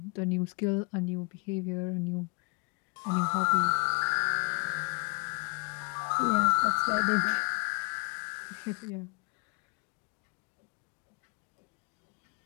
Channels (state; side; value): quieter; right; 32.0 dB